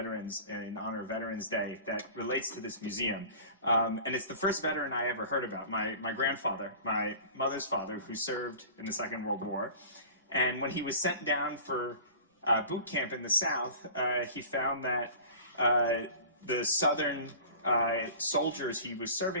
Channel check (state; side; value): inverted; both; correlation -0.40